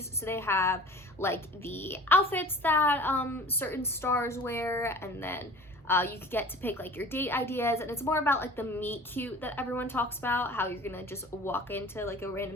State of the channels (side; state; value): both; normal; correlation 0.43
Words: So they have like the outfits that certain stars wear, and then you could get to pick like your date ideas, and it's more about like the meet cute that everyone talks about, how you're gonna just walk into like a